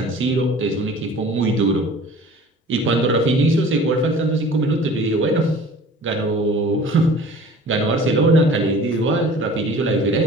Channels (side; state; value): both; normal; correlation 0.45